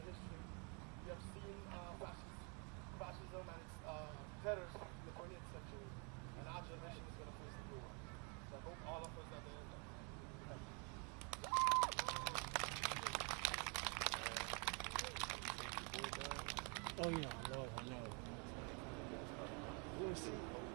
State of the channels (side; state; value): left; quieter; 35.0 dB